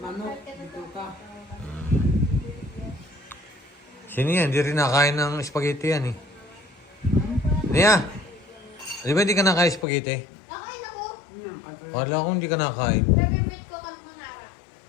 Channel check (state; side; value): drops out; right; at 9.9 s